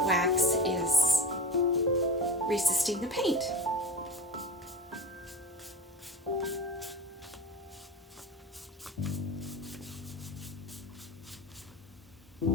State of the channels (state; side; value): normal; both; correlation 0.31